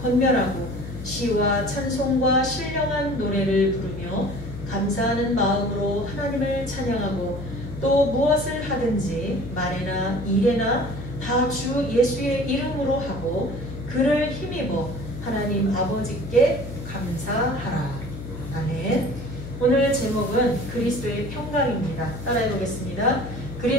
권면하고 시와 찬송과 신령한 노래를 부르며 감사하는 마음으로 하나님을 찬양하고 또 무엇을 하든지 말에나 일에나 다 주 예수의 이름으로 하고 그를 힘입어 하나님 아버지께 감사하라. 아멘. 오늘 제목은 그리스도의 평강입니다. 따라해 보겠습니다.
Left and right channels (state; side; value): noise; left; hum, 10 dB below the sound